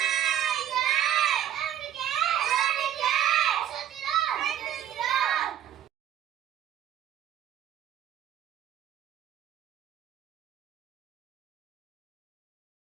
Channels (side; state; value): left; quieter; 10.6 dB